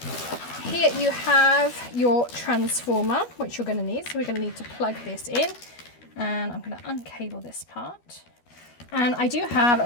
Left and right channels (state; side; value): late; right; 12 ms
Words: Here you have your transformer, which you're going to need. So we're going to need to plug this in. And I'm going to uncable this part. And I do have